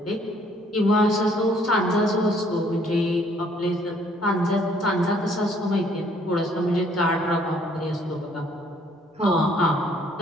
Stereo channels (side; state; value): both; normal; correlation 0.63